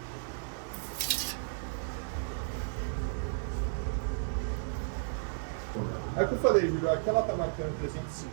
É o que eu falei, Júlio, aqui ela tá marcando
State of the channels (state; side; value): silent; left; digital silence